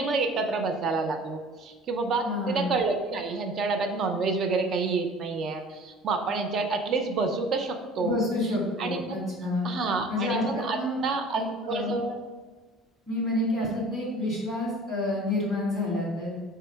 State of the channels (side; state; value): both; normal; correlation 0.46